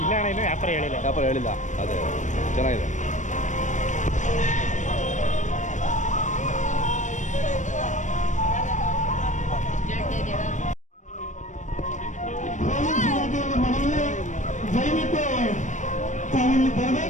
ಇಲ್ಲ ಅಣ್ಣ, ಇನ್ನೂ ವ್ಯಾಪಾರ ಹೇಳಿಲ್ಲ. ಅದೇ ಚೆನ್ನಾಗಿದೆ. ದಯವಿಟ್ಟು ತಾವಿಲ್ಲಿ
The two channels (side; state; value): right; late; 0.35 ms